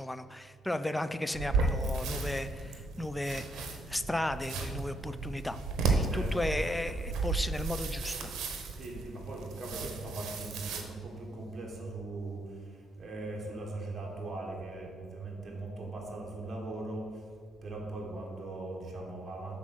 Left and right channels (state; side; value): normal; both; correlation 0.73